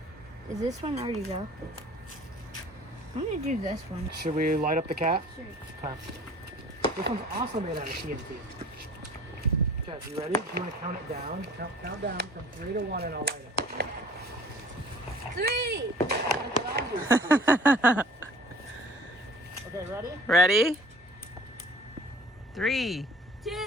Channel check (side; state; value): both; normal; correlation 0.47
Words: Is this one already go? I'm gonna do this one. Should we light up the cat? Sure. Okay. This one's also made out of TNT. Okay, you ready? You want to count it down? Count down from 3 to 1 and I'll light it. 3! Okay, ready? Ready? 3. 2!